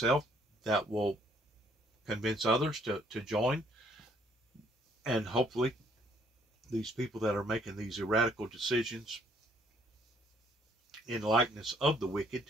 that will convince others to join. And hopefully these people that are making these radical decisions in likeness of the wicked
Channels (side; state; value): both; normal; correlation 0.65